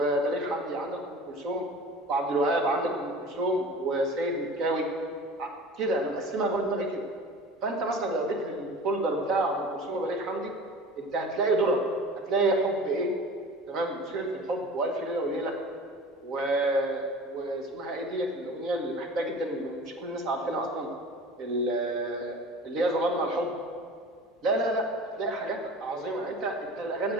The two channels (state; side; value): normal; both; correlation 0.39